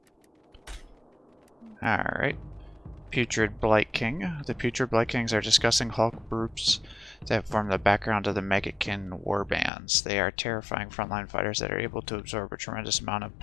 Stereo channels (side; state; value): right; drops out; at 9.7 s